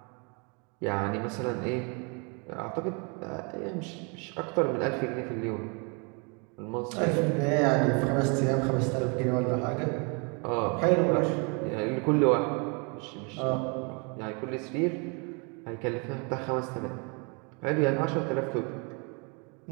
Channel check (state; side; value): quieter; left; 33.8 dB